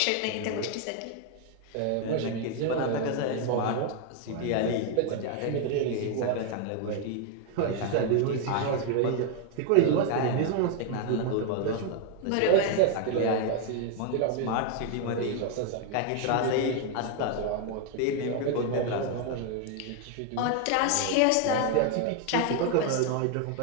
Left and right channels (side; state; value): both; different; correlation 0.01